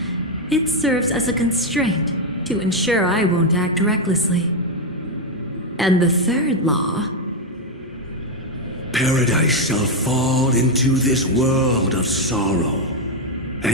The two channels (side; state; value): both; normal; correlation 0.04